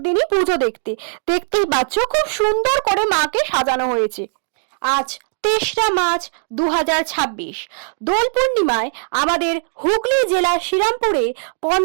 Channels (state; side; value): silent; left; digital silence